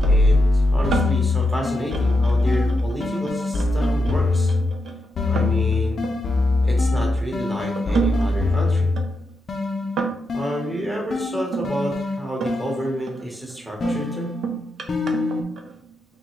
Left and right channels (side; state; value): both; normal; correlation 0.85